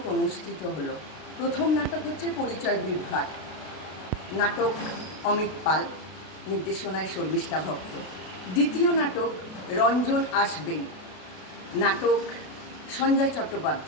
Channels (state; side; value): late; right; 32 ms